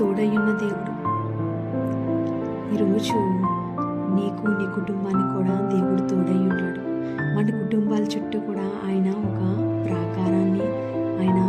ఉన్న దేవుడు, ఈరోజు నీకు, నీ కుటుంబానికి కూడా దేవుడు తోడై ఉన్నాడు. మన కుటుంబాల చుట్టూ కూడా ఆయన ఒక ప్రాకారాన్ని ఆయన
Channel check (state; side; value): identical; both; correlation 1.00